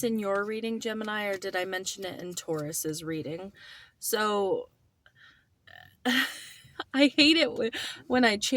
in your reading, Gemini, or did I mention it in Taurus's reading? So I hate it when I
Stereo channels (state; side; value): identical; both; correlation 1.00